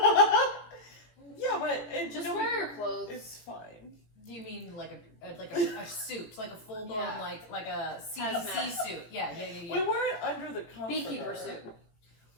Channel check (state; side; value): late; right; 19 ms